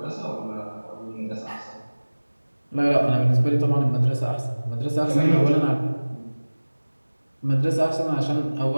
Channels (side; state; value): both; inverted; correlation -1.00